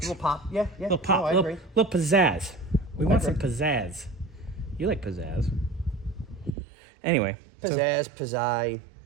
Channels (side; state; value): left; drops out; at 6.6 s